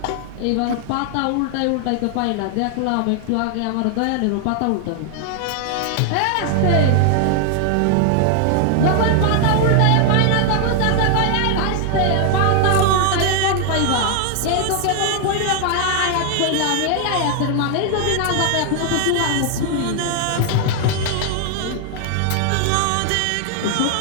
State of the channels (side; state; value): both; different; correlation 0.00